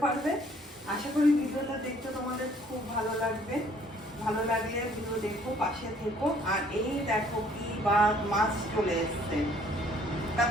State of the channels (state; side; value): normal; both; correlation 0.60